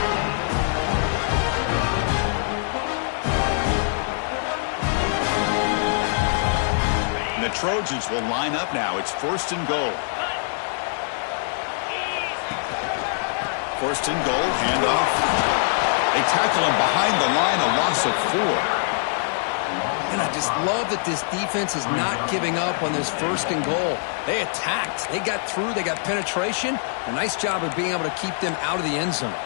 And the Trojans will line up now. It's first and goal. First and goal, handoff. They tackle him behind the line, a loss of 4. And I just love that this defense is not giving up on this first and goal. They attacked. They got through. They got penetration. A nice job of being able to keep them out of the end zone.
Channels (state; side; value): silent; right; 63 dB below the other